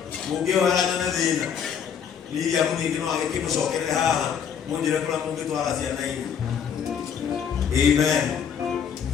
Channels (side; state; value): right; quieter; 7.7 dB